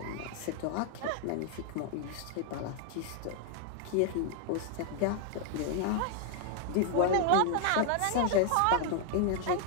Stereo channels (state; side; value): different; both; correlation 0.00